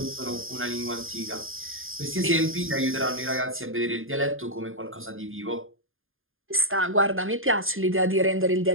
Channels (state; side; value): late; left; 0.59 ms